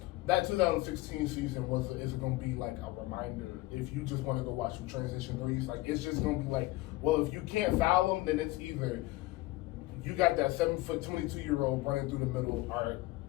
That 2016 season is going to be like a reminder. If you just want to go watch some transition threes, like it's just going to be like, well, if you can't foul them, then it's either you got that 7', 22-year-old running through the middle, or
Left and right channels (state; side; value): quieter; right; 19.3 dB